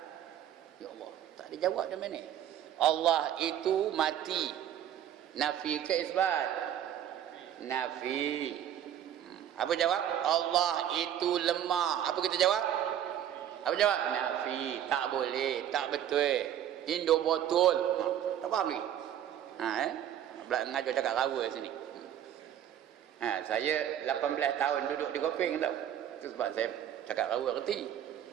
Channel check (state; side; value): quieter; left; 10.6 dB